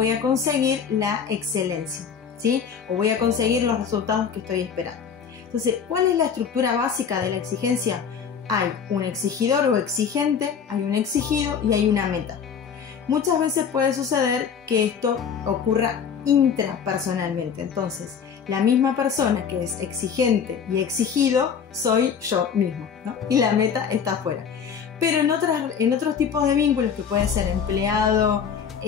a conseguir la excelencia, ¿sí? O voy a conseguir los resultados que estoy esperando. Entonces, ¿cuál es la estructura básica de la exigencia? Hay un exigidor o exigente, hay un exigido y hay una meta. Muchas veces puede suceder que esto ocurra intrapersonalmente. Entonces, la misma persona que es exigente y exigido soy yo mismo, ¿no? Y la meta está afuera. Pero en otros tipos de vínculos, que puede ser empleado,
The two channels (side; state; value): right; quieter; 7.0 dB